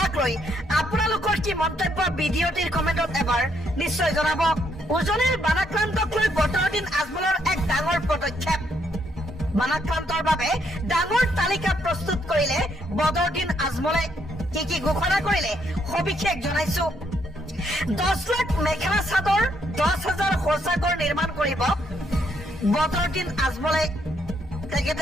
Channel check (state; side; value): normal; both; correlation 0.73